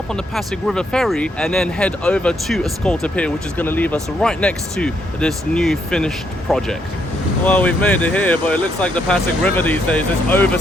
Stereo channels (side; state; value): both; normal; correlation 0.75